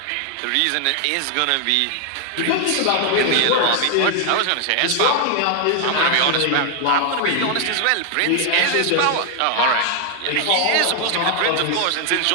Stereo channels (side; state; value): both; different; correlation 0.00